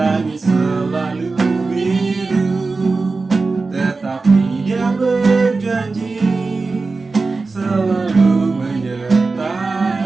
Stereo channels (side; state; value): left; quieter; 3.9 dB